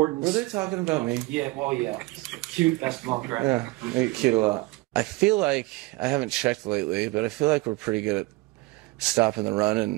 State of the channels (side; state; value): left; quieter; 21.7 dB